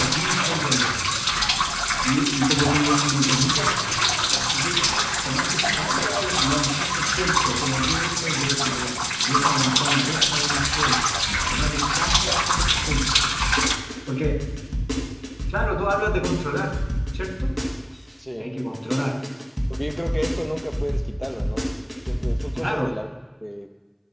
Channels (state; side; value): identical; both; correlation 1.00